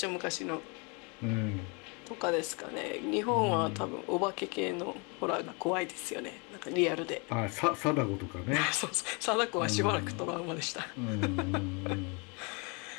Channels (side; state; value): right; quieter; 31.9 dB